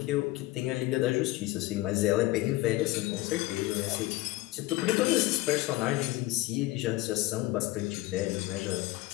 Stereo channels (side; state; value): right; quieter; 18.5 dB